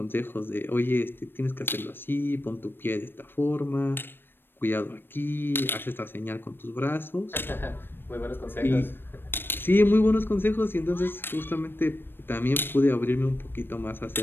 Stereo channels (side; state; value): right; late; 0.098 ms